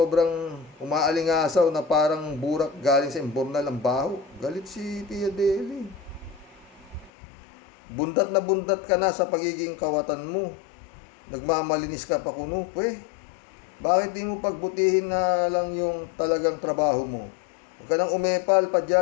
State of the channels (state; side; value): drops out; right; at 7.1 s